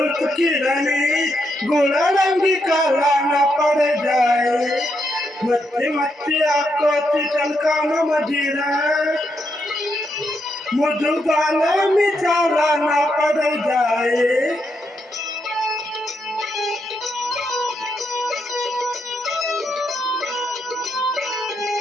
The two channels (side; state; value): both; normal; correlation 0.80